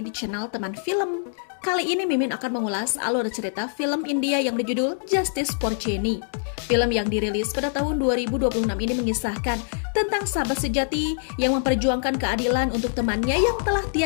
di channel Teman Film. Kali ini Mimin akan mengulas alur cerita film India yang berjudul Justice for Jenny. Film yang dirilis pada tahun 2026 ini mengisahkan tentang sahabat sejati yang memperjuangkan keadilan untuk temannya yang telah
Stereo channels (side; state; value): right; silent; digital silence